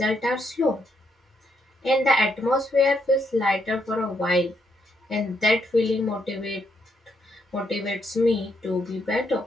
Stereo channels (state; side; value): normal; both; correlation 0.76